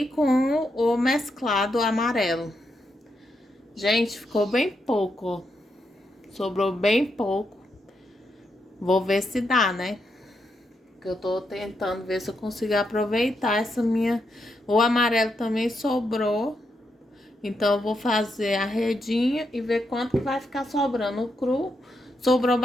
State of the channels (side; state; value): both; normal; correlation 0.82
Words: com o mesclado amarelo. Gente, ficou bem pouco, ó. Sobrou bem pouco. Vou ver se dá, né? Porque eu tô tentando ver se eu consigo aproveitar essa minha... O amarelo também sobrou. Então, eu vou fazer a redinha e ver quanto vai ficar sobrando. O cru sobrou